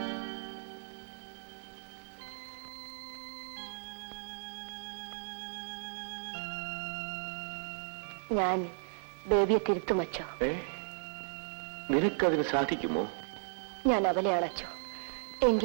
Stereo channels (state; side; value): silent; left; 54 dB below the other